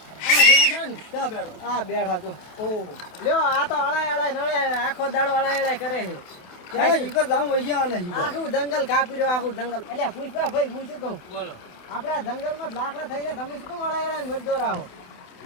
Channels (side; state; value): right; late; 28 ms